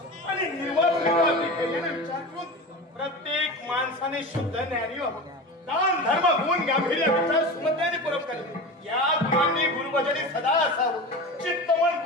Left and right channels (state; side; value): normal; both; correlation 0.28